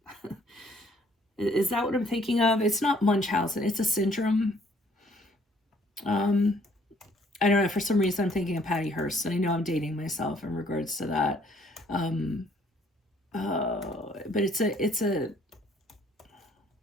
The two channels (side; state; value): both; normal; correlation 0.63